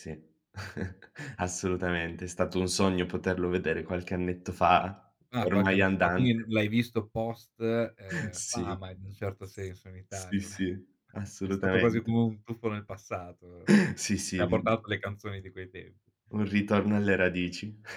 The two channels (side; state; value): both; identical; correlation 1.00